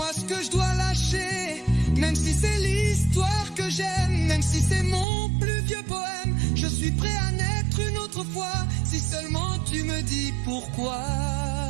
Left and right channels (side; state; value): left; drops out; at 5.1 s